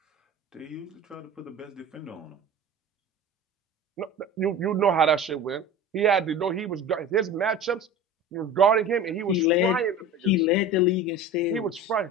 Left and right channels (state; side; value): normal; both; correlation 0.35